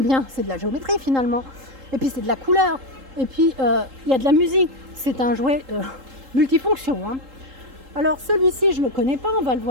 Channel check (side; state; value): left; late; 3.8 ms